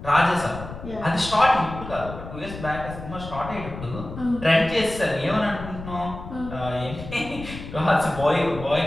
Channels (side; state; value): left; noise; rumble, 11 dB below the sound